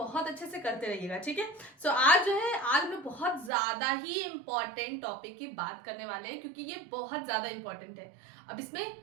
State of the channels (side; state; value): left; drops out; at 3.5 s